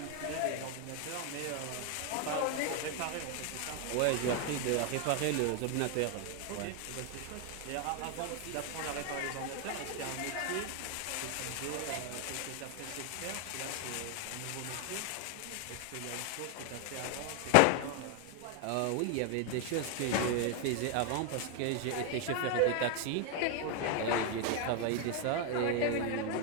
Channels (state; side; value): different; both; correlation 0.01